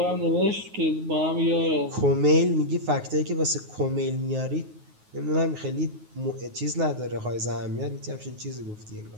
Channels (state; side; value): late; left; 9.5 ms